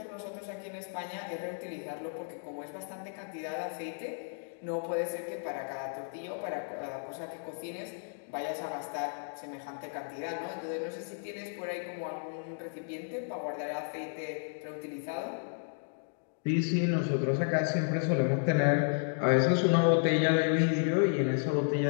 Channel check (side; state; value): right; silent; digital silence